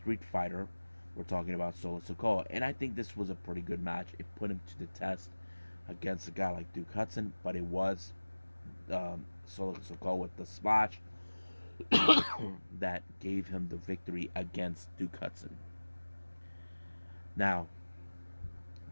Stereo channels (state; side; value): inverted; both; correlation -1.00